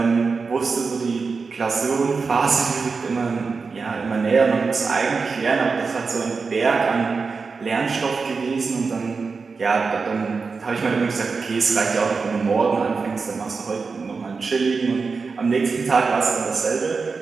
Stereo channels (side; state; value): left; quieter; 4.7 dB